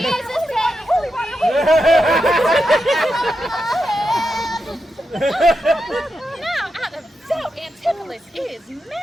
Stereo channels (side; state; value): both; normal; correlation 0.87